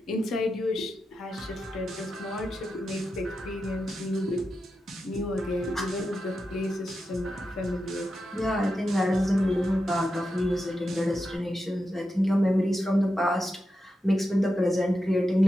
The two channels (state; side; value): normal; both; correlation 0.89